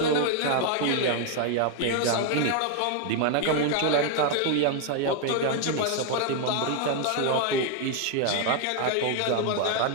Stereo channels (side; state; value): both; different; correlation 0.01